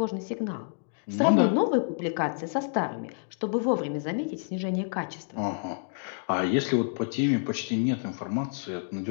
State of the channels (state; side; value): silent; right; digital silence